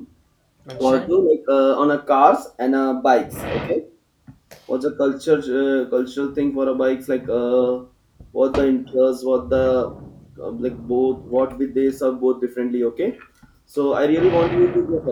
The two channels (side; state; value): both; identical; correlation 1.00